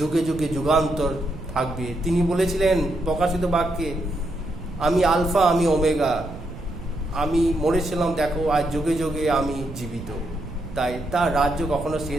যুগে যুগান্তর থাকবে, তিনি বলেছিলেন প্রকাশিত বাক্যে, আমি আলফা, আমি ওমেগা, আমি মরেছিলাম, দেখো আজ যুগে যুগে আমি জীবিত। তাই তার রাজ্য কখনো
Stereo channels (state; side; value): noise; right; rumble, 13 dB below the sound